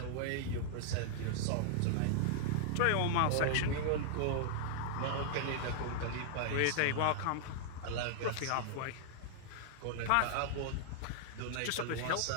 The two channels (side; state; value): both; different; correlation -0.01